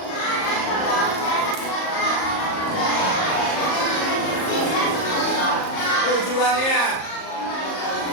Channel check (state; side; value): late; right; 38 ms